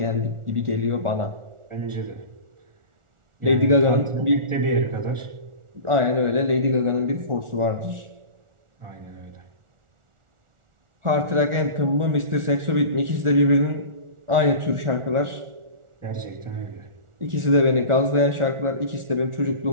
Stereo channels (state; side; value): late; left; 1.4 ms